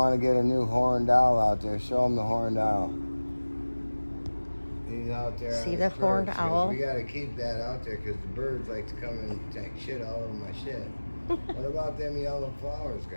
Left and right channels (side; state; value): both; inverted; correlation -1.00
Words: to get a new horned owl out there. Show them the horned owl. He's out there. See the horned owl? We got to keep that out there because the birds like to come and take shit all over my shit. What about them yellow flowers,